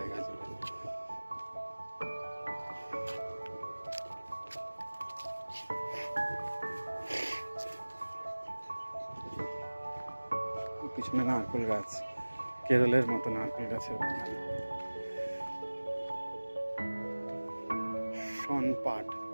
জুড়ে। পিছনে নারকেল গাছ, কেরলের মতো নারকেল গাছের বাগান। শন পাট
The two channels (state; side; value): inverted; both; correlation -1.00